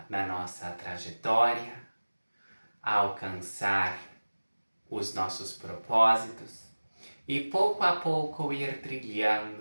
na nossa trajetória, a alcançar os nossos propósitos e pouco a pouco ir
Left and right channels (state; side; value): inverted; both; correlation -1.00